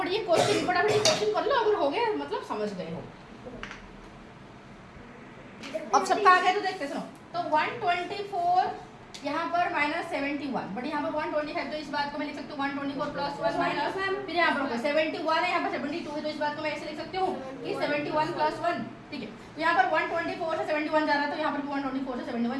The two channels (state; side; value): identical; both; correlation 1.00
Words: ये क्वेश्चन कर लो, अगर हो गया मतलब समझ गए हो। अब सबका आ गया तो देखते सुनो, तो 124 यहाँ पर -71, बट यहाँ पर 125, तो इस बात को मैं लिख सकती हूँ 124 + 1 माइनस, फिर यहाँ पर 71 है, यहाँ पर 72 है, तो इस बात को मैं ऐसे लिख सकती हूँ कि 71 + 1, ठीक है। तो यहाँ पर 124 से 71 जा रहा था, तो यहाँ पर 124 से